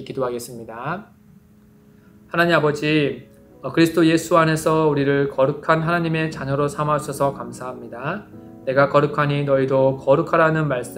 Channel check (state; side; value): identical; both; correlation 1.00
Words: 기도하겠습니다. 하나님 아버지, 그리스도 예수 안에서 우리를 거룩한 하나님의 자녀로 삼아주셔서 감사합니다. 내가 거룩하니 너희도 거룩하라는